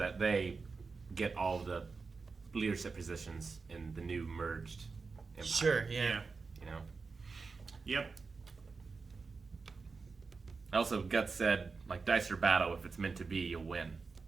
they get all the leadership positions in the new merged empire. Sure, yeah. You know? Yep. Also, Guts said, like, dice or battle, if it's meant to be, you'll win.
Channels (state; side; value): quieter; left; 4.5 dB